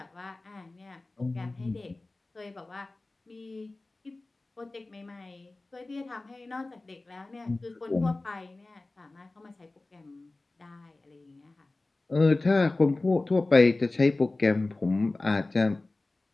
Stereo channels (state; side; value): quieter; right; 3.1 dB